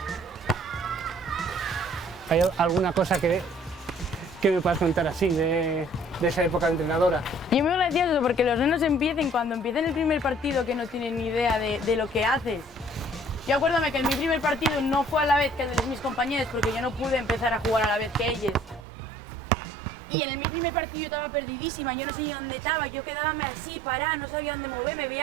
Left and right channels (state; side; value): drops out; left; at 18.9 s